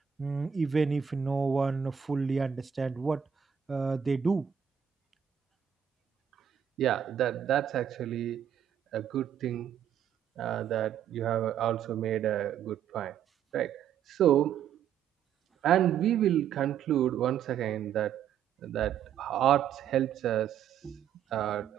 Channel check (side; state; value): left; quieter; 8.7 dB